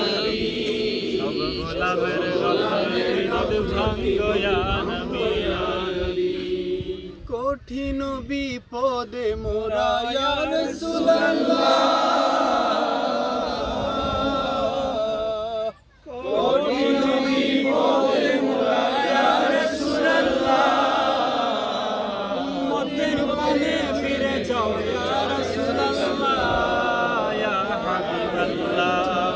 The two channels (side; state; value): both; identical; correlation 1.00